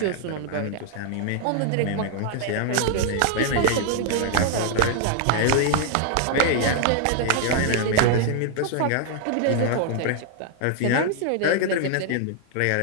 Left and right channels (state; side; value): different; both; correlation -0.01